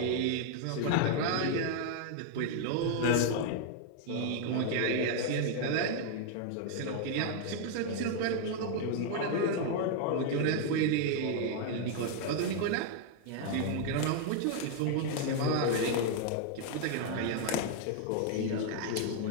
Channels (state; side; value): different; both; correlation 0.00